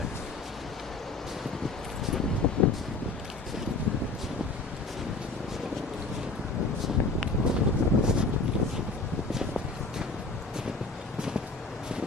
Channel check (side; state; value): right; quieter; 3.5 dB